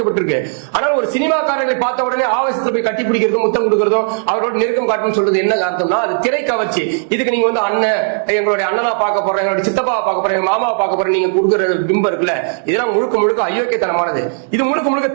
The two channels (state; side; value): silent; left; digital silence